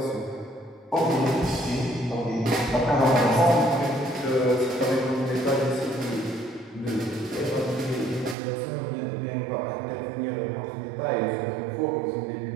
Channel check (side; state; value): left; drops out; at 8.3 s